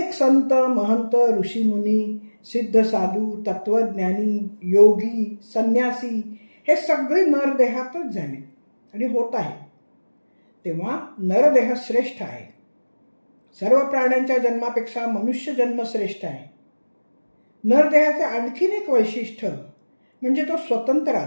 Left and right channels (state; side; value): inverted; both; correlation -1.00